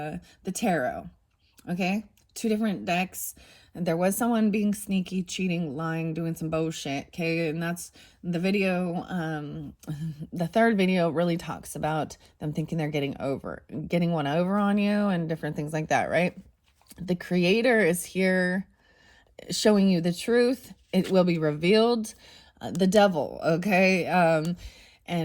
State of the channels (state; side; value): identical; both; correlation 1.00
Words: tarot. Okay. 2 different decks. There was someone being sneaky, cheating, lying, doing some bullshit. Okay. And that's the video. The third video really talks about them thinking they're getting one over on you and different things like that. Right. The creator is here showing you the truth. It will be revealed. The devil, okay?